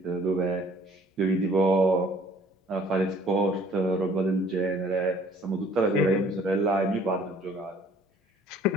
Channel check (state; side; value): normal; both; correlation 0.56